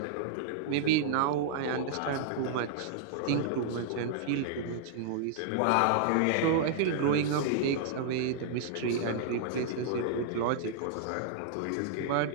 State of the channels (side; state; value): both; different; correlation -0.01